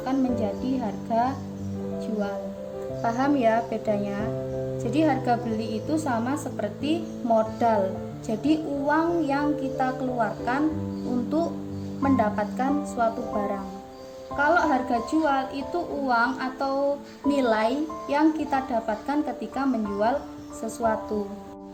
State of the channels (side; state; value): both; identical; correlation 1.00